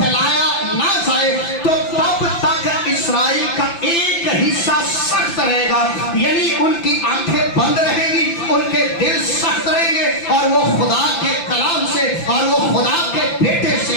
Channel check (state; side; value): late; right; 5.9 ms